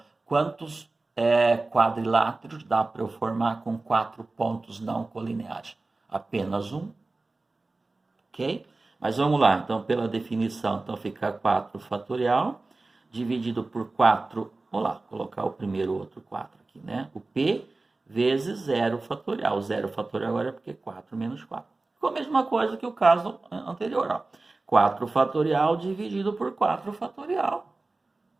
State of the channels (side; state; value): left; quieter; 3.3 dB